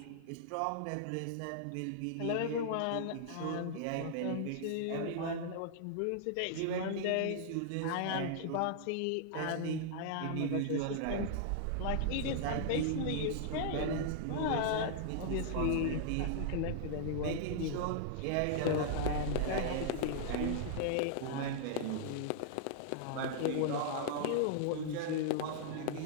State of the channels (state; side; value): different; both; correlation -0.01